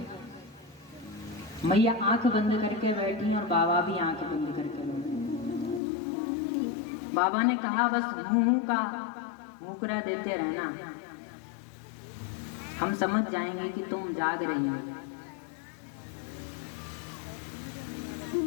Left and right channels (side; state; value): right; drops out; at 5.8 s